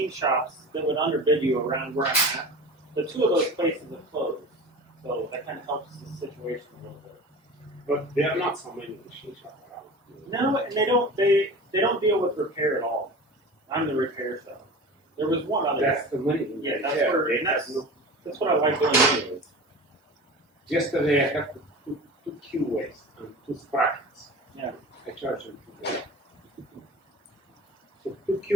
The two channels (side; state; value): both; normal; correlation 0.35